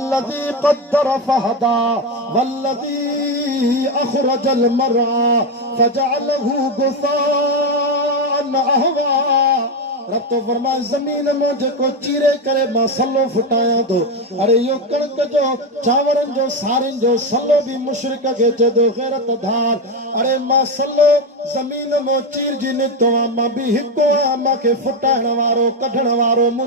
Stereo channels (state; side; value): normal; both; correlation 0.11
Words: قدر فهدى والذي أخرج المرعى فجعله غثاء أحوى رب تو فرمائے زمین میں جکو چیرے کرے ماں سلو پھٹایا دو ارے یو کڑک جو چاورن جو سارن جو سلو بھی مشرک کے چے دو غیرت دھار ارے ماں سلو زمین میں چیر جی نکتو ماں بھی ہکو ماں کے پھٹائن وارو کڈھن وارو